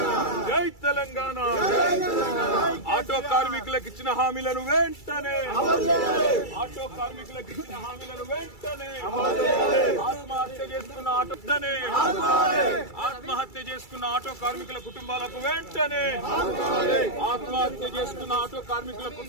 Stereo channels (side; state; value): right; late; 2.3 ms